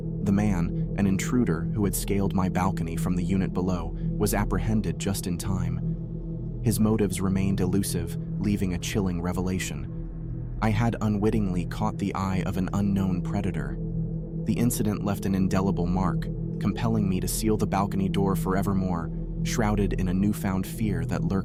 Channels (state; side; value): identical; both; correlation 1.00